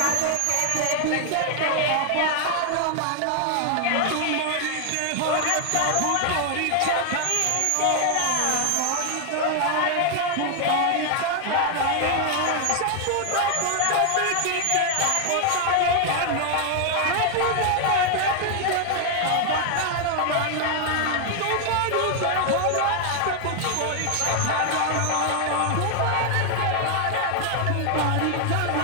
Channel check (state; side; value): different; both; correlation 0.00